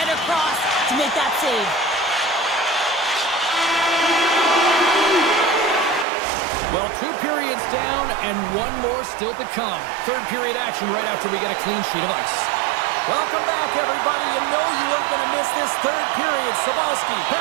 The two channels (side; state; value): left; drops out; at 6.1 s